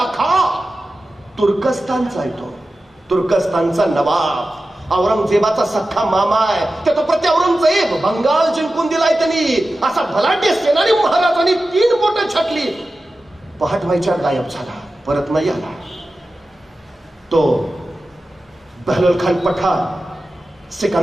खान, तुर्कस्तानचा आहे तो, तुर्कस्तानचा नवाब. औरंगजेबाचा सख्खा मामा आहे. त्या तो प्रति औरंगजेब बंगाल जिंकून दिलाय त्यांनी. असा भलाढ्य सेनानी महाराजांनी 3 बोटं छाटली. पहाट व्हायच्या गायब झाला, परत नाही आला. तो बहलोल खान पठाण,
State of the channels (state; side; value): normal; both; correlation 0.94